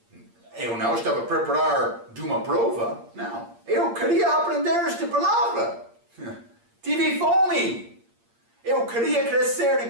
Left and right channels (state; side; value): late; left; 8.6 ms